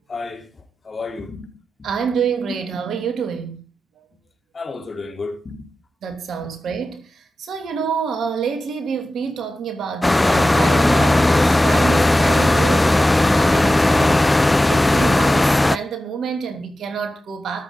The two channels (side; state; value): both; normal; correlation 0.93